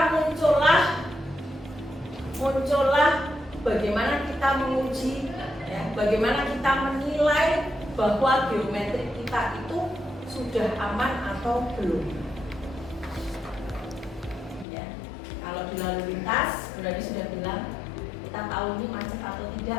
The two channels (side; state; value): right; drops out; at 14.7 s